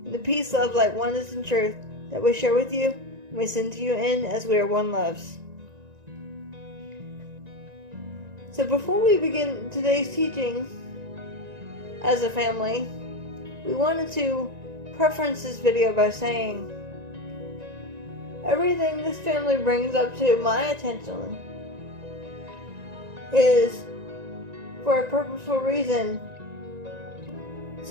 and the peace, love, light, oneness, and truth that we share with you and we send to you in as we are one, loves. So before we begin today's teaching as a family, we wanted to preference this video by saying everything this family brings up to my attention is for a purposeful reason,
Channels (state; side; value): late; left; 1.9 ms